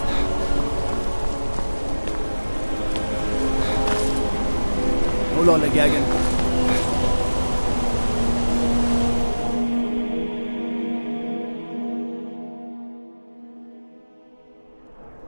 Hold on, Legagan.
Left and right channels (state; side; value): inverted; both; correlation -1.00